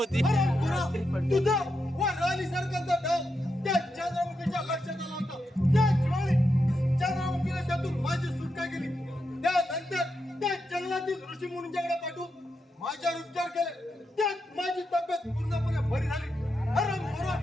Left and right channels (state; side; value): normal; both; correlation 0.85